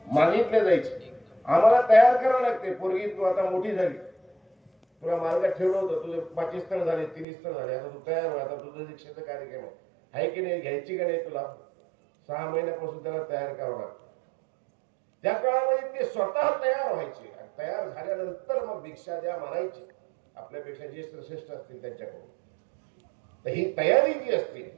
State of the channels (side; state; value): left; drops out; at 7.2 s